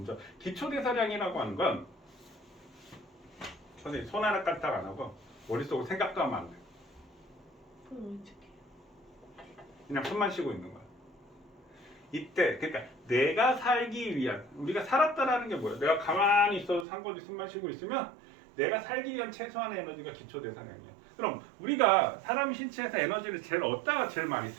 기초대사량이라고 하는 건 선생님 손 하나 까딱 안 하고 머릿속으로 생각도 하면 안 돼. 그럼 어떻게? 그냥 숨만 쉬고 있는 거야. 이때 그러니까 내가 살기 위한, 우리가 살았다라는 게 뭐야? 내가 가만히 있어도 상관없이 숨만 쉬고 있으면 내가 살기 위한 최소한의 에너지가 기초대사량이야. 그럼 우리가 사람 신체에서 에너지를 제일 얻다가 제일 많이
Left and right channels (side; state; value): left; drops out; at 16.9 s